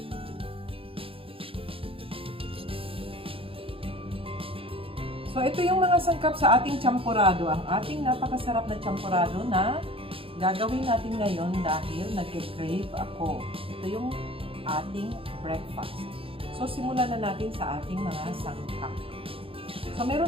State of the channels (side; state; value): left; late; 0.27 ms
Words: So, ito yung mga sangkap sa ating champorado. Ang ating napakasarap na champorado na gagawin natin ngayon dahil nag-crave ako. Ito yung ating breakfast. So, simulan na natin sa ating mga sangkap. So,